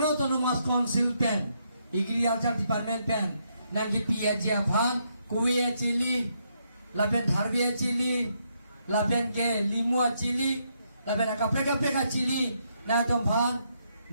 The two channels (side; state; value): both; inverted; correlation -0.77